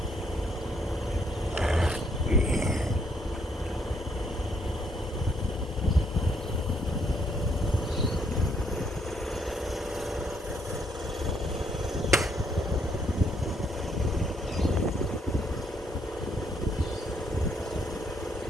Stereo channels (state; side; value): normal; both; correlation 0.71